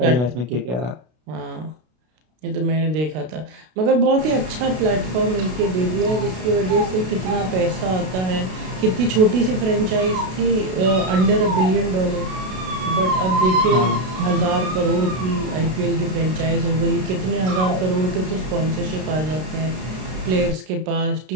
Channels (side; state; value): left; late; 32 ms